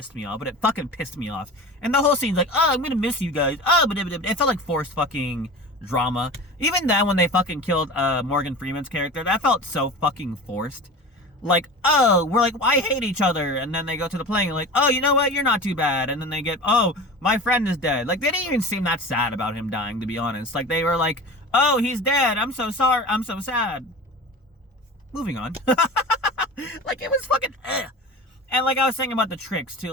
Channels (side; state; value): both; normal; correlation 0.34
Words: me off, but it fucking pissed me off. And the whole scene's like, oh, I'm gonna miss you guys. Oh, but it felt like forced fucking drama. Even then, when they fucking killed Morgan Freeman's character, that felt so fucking forced. Like, oh, we're like, I hate each other. And then they go to the plane and like, oh, you know what? You're not too bad. And then they get, oh, my friend is dead. Like, they didn't even seem that sad about him dying, to be honest. Like, they were like, oh, he's dead. I'm so sorry. I'm so sad. Moving on. Like, it was fucking, ugh. And like I was saying about the tricks, too.